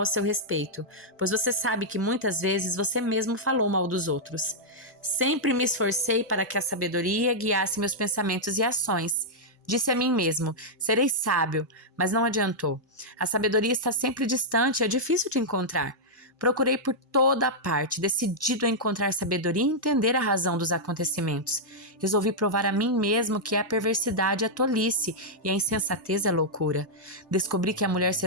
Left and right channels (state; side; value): normal; both; correlation -0.07